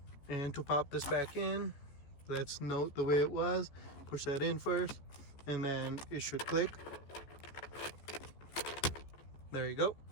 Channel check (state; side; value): late; right; 14 ms